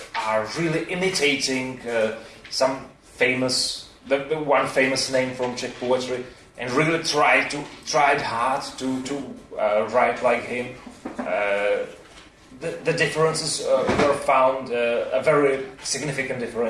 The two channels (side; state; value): both; identical; correlation 1.00